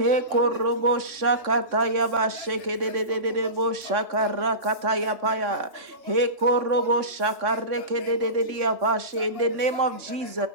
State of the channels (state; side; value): late; left; 3.6 ms